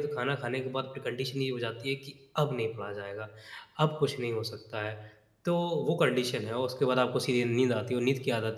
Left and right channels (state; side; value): identical; both; correlation 1.00